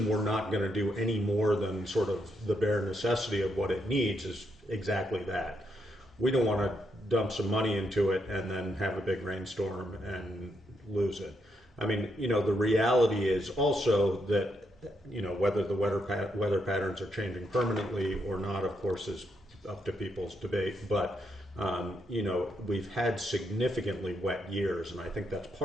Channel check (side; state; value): both; normal; correlation 0.79